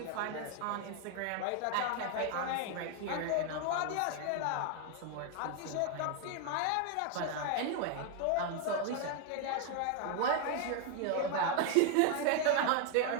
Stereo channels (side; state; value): both; different; correlation 0.00